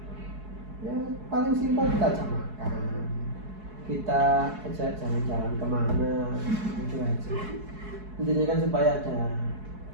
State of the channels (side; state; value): left; late; 4.7 ms